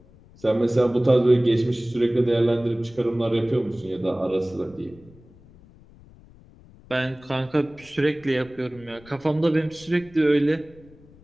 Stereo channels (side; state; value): left; noise; rumble, 25 dB below the sound